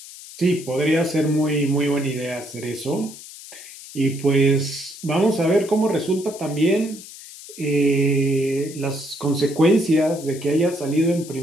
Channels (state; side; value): noise; left; hiss, 16 dB below the sound